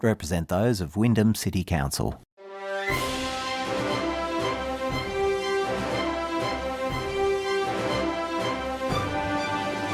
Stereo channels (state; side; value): identical; both; correlation 1.00